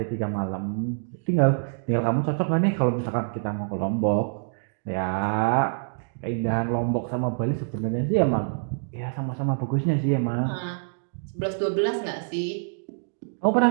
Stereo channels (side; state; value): left; silent; digital silence